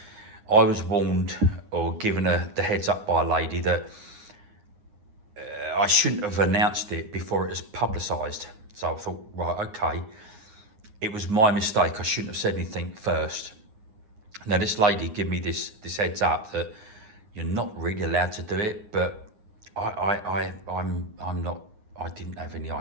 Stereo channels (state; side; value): late; left; 9.7 ms